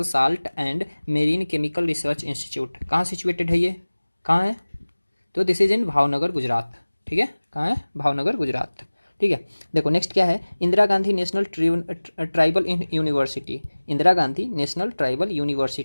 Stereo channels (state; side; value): inverted; both; correlation -1.00